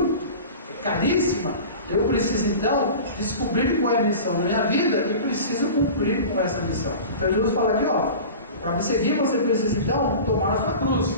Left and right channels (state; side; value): inverted; both; correlation -0.35